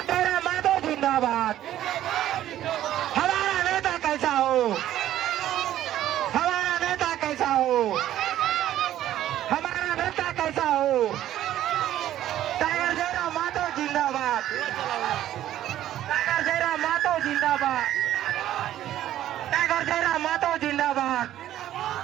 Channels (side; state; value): left; quieter; 12.6 dB